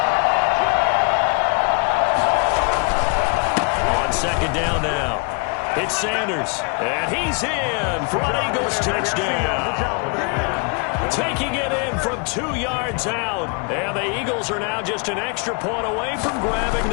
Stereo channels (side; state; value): right; quieter; 32.4 dB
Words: 2nd down now. It's Sanders. And he's in for an Eagles touchdown. Taking it in from 2 yards out. And the Eagles are now just an extra point away from grabbing